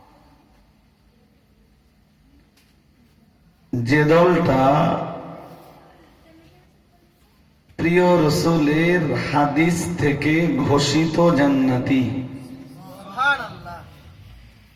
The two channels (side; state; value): both; identical; correlation 1.00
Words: যে দলটা প্রিয় রসুলের হাদিস থেকে ঘোষিত জান্নাতি।